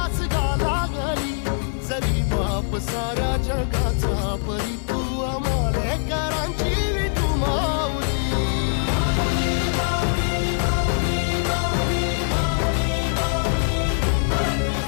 गा लागली जरी बाप साऱ्या जगाचा परी तू आमालेकरांची विठू माऊली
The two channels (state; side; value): silent; right; digital silence